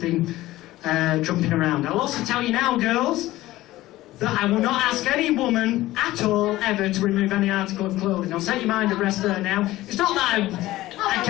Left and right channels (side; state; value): right; quieter; 16.7 dB